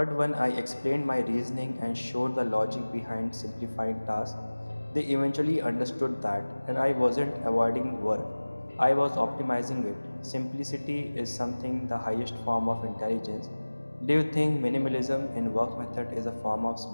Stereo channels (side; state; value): both; inverted; correlation -1.00